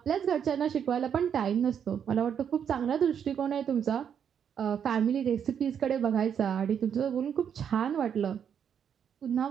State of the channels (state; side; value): quieter; left; 8.1 dB